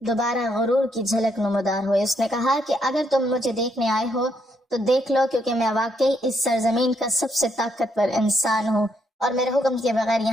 دوبارہ غرور کی جھلک نمودار ہوئی۔ اس نے کہا کہ اگر تم مجھے دیکھنے آئے ہو تو دیکھ لو، کیونکہ میں واقعی اس سرزمین کا سب سے طاقتور انسان ہوں اور میرے حکم کے بغیر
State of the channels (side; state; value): both; normal; correlation 0.75